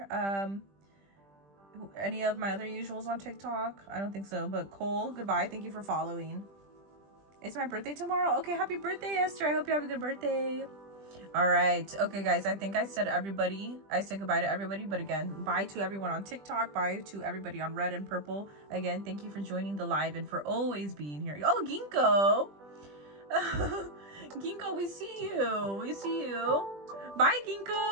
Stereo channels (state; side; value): late; left; 20 ms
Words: Any of my other usuals on TikTok? I don't think so, but Cole, goodbye. Thank you for following. It's my birthday tomorrow. Okay, happy birthday, Esther. I hope you have a good birthday. All right. Okay, guys, I think I said everybody. I said goodbye to everybody, but again, bye to everyone on TikTok. Bye to everybody on Red and Purple. Again, thank you for joining the live and for always being here. Oh, Ginkgo. Ginkgo, we see you. We see you. Bye,